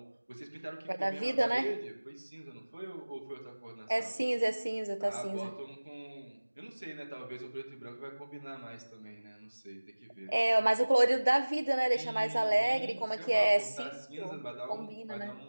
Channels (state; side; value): inverted; both; correlation -1.00